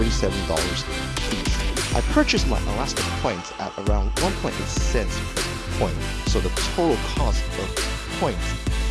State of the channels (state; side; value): identical; both; correlation 1.00